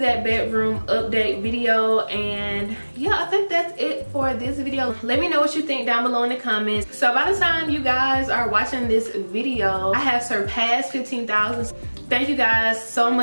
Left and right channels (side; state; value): both; inverted; correlation -1.00